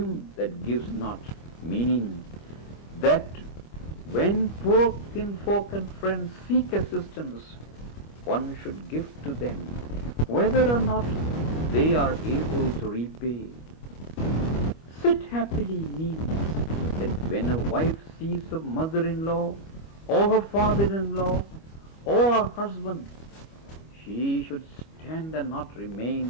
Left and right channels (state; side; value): late; right; 25 ms